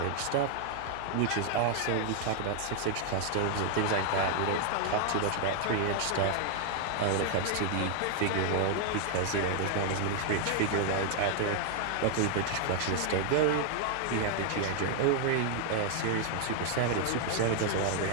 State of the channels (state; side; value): different; both; correlation 0.00